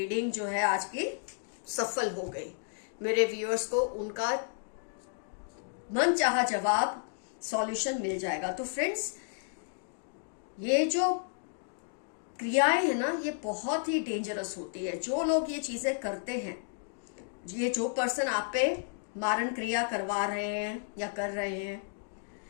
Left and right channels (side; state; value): right; silent; digital silence